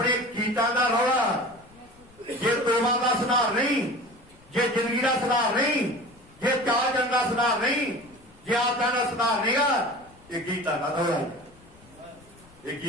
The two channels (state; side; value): noise; left; rumble, 27 dB below the sound